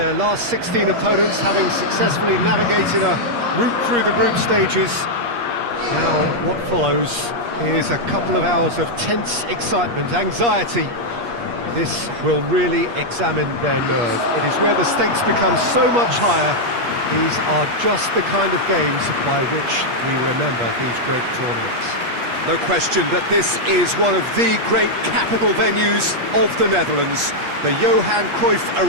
last 16 opponents, having successfully navigated a route through the group stages. Now, what follows is a couple of hours of tense excitement, anxiety. This will really examine their nerve. It is where the stakes become so much higher. These are just the kind of games by which we remember these great tournaments. No question that this is one of the great capital venues of the Netherlands, the Johan Cruyff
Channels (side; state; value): left; late; 8.4 ms